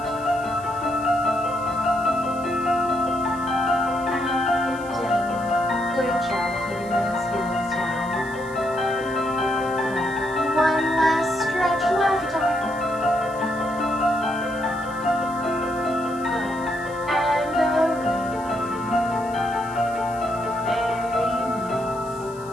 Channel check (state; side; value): noise; left; hiss, 23 dB below the sound